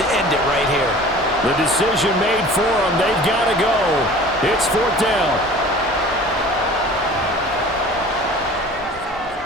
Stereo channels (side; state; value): both; normal; correlation 0.44